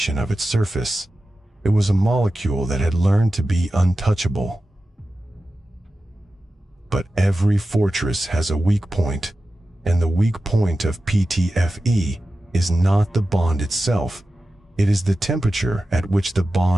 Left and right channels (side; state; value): both; normal; correlation 0.93